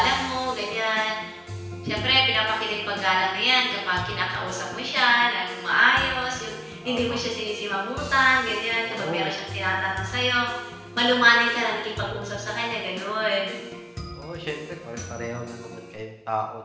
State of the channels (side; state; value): both; identical; correlation 1.00